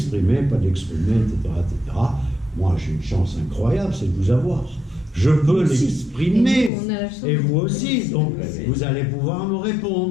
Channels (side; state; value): right; drops out; at 6.7 s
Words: pas de l'exprimer, etc., etc. Moi, j'ai une chance incroyable, c'est de vous avoir. Je peux l'exprimer, et vous aussi. Donc, vous allez pouvoir me